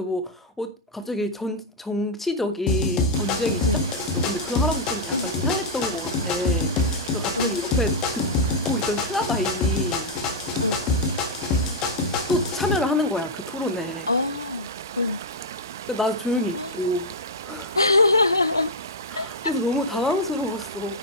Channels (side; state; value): both; normal; correlation -0.03